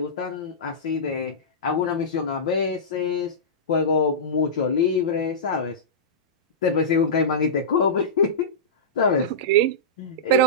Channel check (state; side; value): normal; both; correlation -0.18